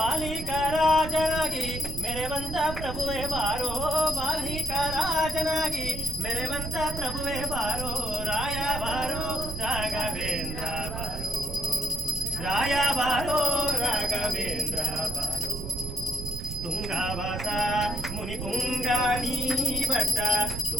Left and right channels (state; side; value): noise; right; rumble, 5 dB below the sound